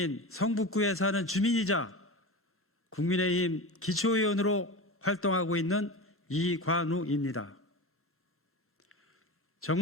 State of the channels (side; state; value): both; normal; correlation 0.27